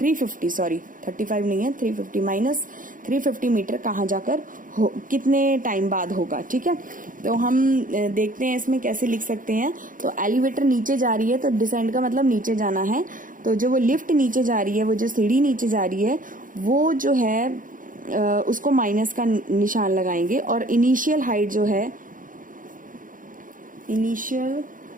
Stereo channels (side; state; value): left; late; 0.39 ms